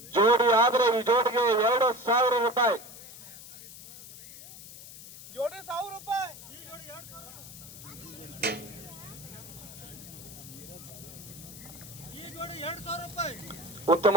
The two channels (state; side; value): noise; left; hiss, 15 dB below the sound